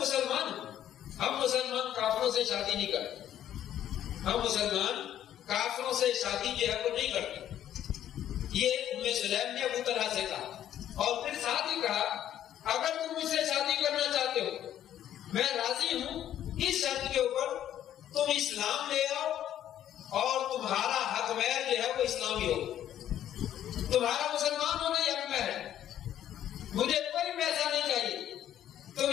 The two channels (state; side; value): quieter; right; 11.2 dB